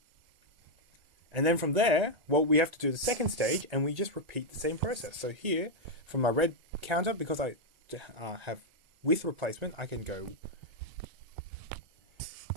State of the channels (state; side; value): late; left; 1.9 ms